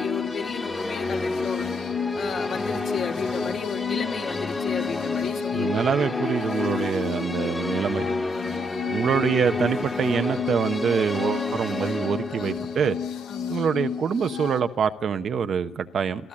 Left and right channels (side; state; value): both; normal; correlation 0.75